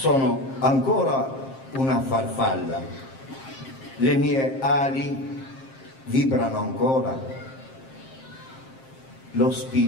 ancora una farfalla, le mie ali vibrano ancora, lo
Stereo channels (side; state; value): right; late; 7.5 ms